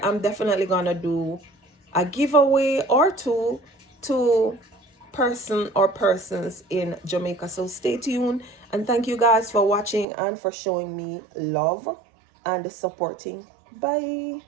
definitely going to do a giveaway or two to person or persons in Jamaica. So stay tuned, and thank you guys for watching and for showing me love and supporting. Bye.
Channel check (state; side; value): drops out; left; at 10.1 s